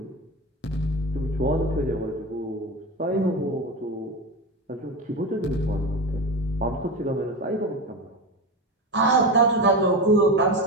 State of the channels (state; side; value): normal; both; correlation 0.22